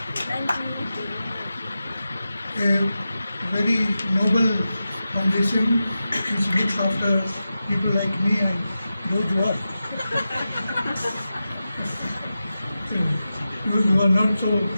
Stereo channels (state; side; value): inverted; both; correlation -0.92